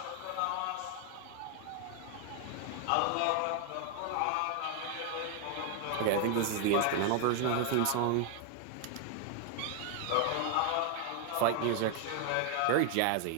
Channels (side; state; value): both; different; correlation 0.00